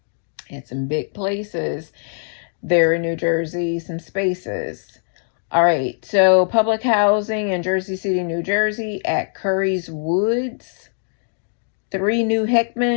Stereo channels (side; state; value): right; silent; digital silence